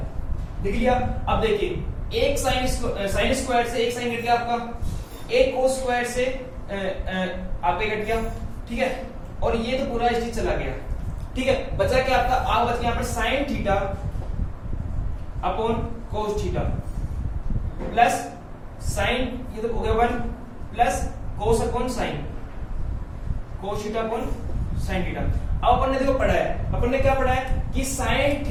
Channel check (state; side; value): identical; both; correlation 1.00